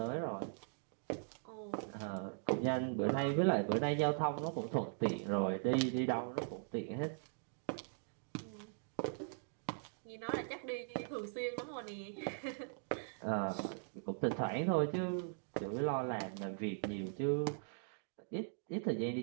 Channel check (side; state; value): left; silent; digital silence